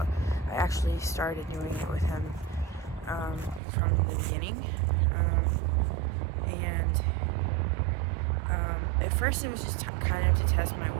I actually started doing it with him from the beginning, and at first it was just kind of to test my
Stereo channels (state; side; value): drops out; left; at 3.6 s